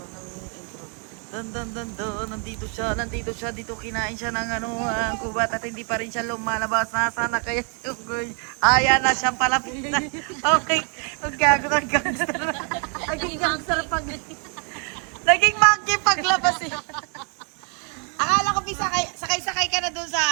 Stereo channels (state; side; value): quieter; left; 38.3 dB